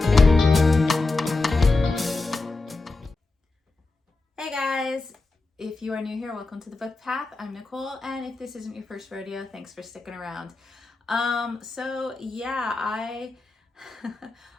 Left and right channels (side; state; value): right; quieter; 3.5 dB